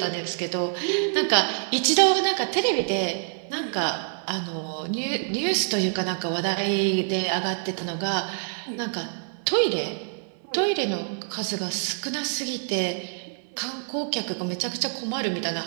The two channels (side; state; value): left; silent; 61 dB below the other